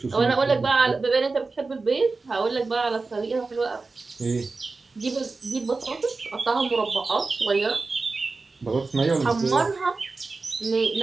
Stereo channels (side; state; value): left; quieter; 3.9 dB